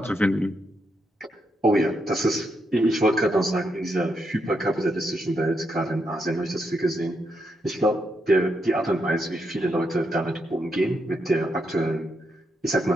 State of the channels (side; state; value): both; normal; correlation 0.81